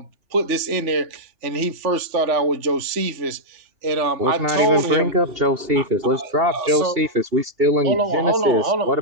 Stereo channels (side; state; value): left; late; 3.4 ms